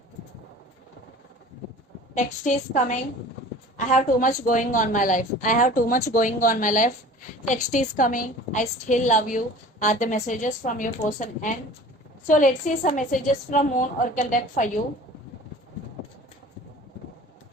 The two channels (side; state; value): both; normal; correlation 0.43